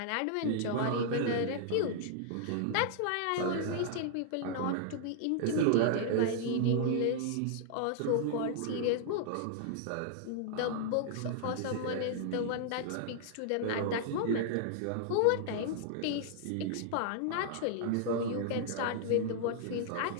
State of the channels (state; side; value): different; both; correlation -0.01